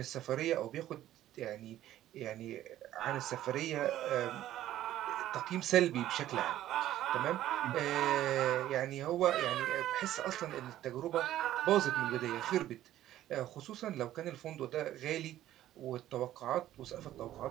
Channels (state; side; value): quieter; left; 13.2 dB